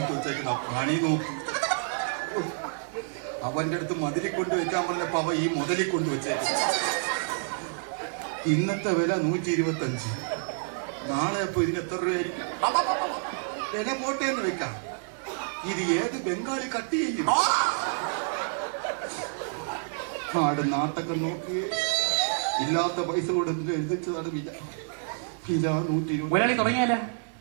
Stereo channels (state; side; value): silent; left; digital silence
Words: വെച്ചേക്കുന്ന പണി നോക്കും. അവന്റെ അടുത്ത് മതിലിൽ കൊണ്ട് വെക്കാൻ പറഞ്ഞപ്പോ അവ ഈ മുതലിൽ കൊണ്ട് വെച്ചേക്കും. ഇന്നത്തെ വില 125. നാളെ അപ്പൊ ഇതിന് എത്ര രൂപയായിരിക്കും? വില പോട്ടേന്ന് വെക്കാം. ഇത് ഏത് ബംഗാളി കട്ട് ചെയ്യും? ആട് നാട്ടൊക്കെ നോക്കിയേ, ഇല്ലാത്ത പൈസ കൊടുത്ത് എഴുതിച്ചതാണ് വില. വില 120. ഒരാളി തുടങ്ങിയാലേ